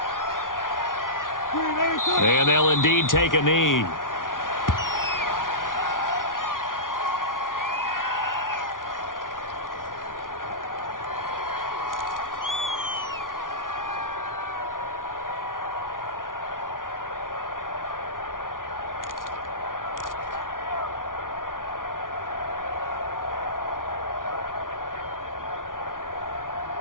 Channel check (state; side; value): late; right; 0.89 ms